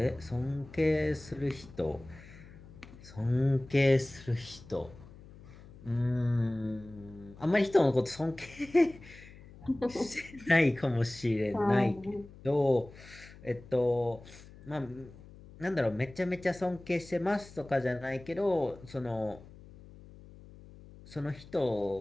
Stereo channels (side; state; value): left; noise; hum, 19 dB below the sound